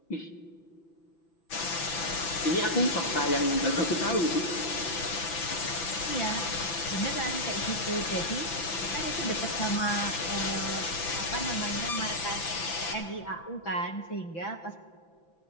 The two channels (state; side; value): late; right; 6.0 ms